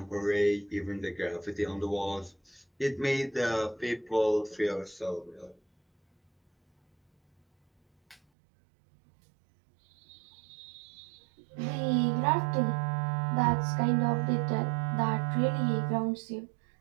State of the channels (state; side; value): drops out; left; at 8.2 s